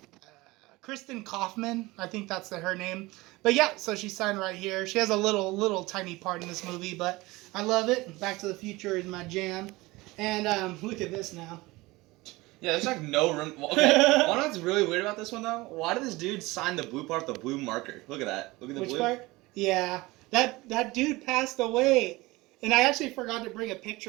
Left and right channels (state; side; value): quieter; left; 21.2 dB